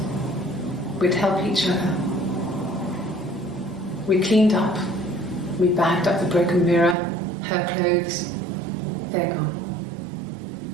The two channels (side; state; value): left; drops out; at 7.0 s